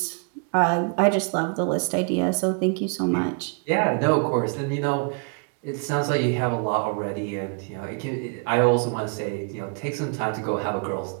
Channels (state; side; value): quieter; left; 35.6 dB